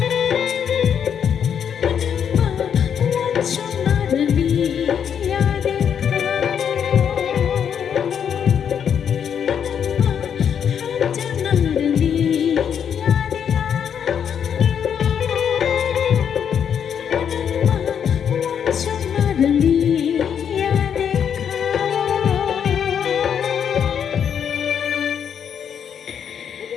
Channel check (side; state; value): right; quieter; 8.1 dB